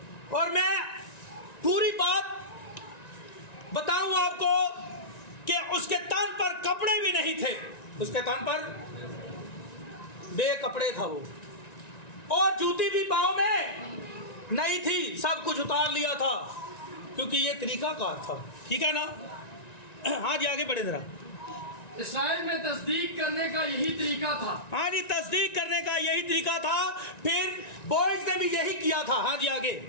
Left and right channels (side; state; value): right; late; 1.9 ms